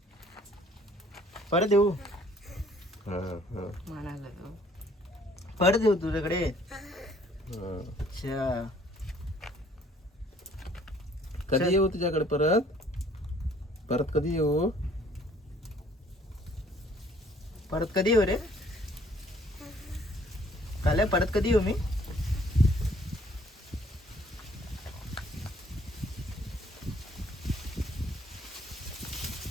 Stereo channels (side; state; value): both; normal; correlation 0.59